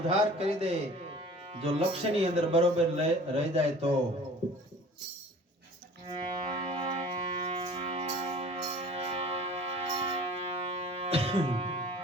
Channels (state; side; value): normal; both; correlation 0.46